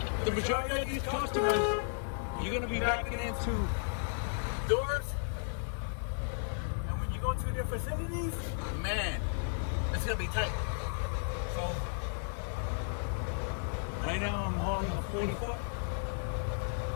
the majority of these customers, you're gonna be backing into Doors. And when you go to their facilities, man, it's gonna be tight. So right now I'm hauling a 40 foot.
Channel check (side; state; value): right; silent; digital silence